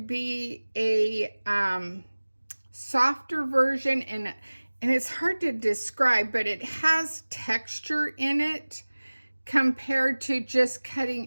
a softer version, and it's hard to describe, but it has texture in it compared to just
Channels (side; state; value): both; inverted; correlation -1.00